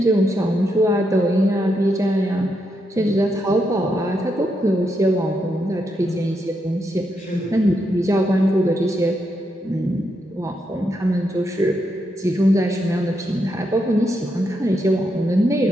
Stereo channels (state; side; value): normal; both; correlation 0.81